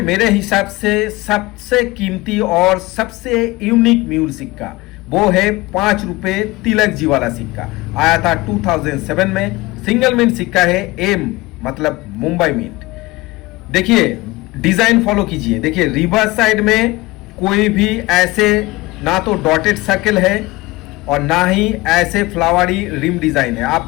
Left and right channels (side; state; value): right; quieter; 21.1 dB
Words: हिसाब से सबसे कीमती और सबसे यूनिक म्यूल सिक्का वो है 5 रुपए तिलक जी वाला सिक्का। आया था 2007 में, सिंगल मिंट सिक्का है, एम मतलब मुंबई मिंट। देखिए डिजाइन फॉलो कीजिए। देखिए रिवर्स साइड में कोई भी ऐसे ना तो डॉटेड सर्कल है और ना ही ऐसे फ्लावरी रिम डिजाइन है।